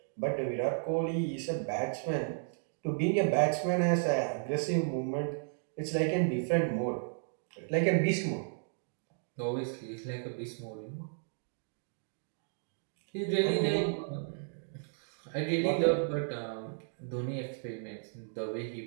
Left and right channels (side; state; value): left; silent; digital silence